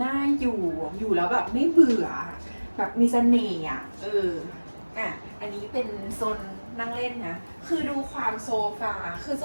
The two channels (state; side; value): inverted; both; correlation -1.00